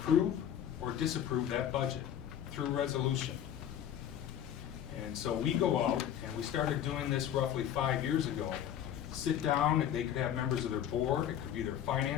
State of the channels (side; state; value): right; quieter; 10.1 dB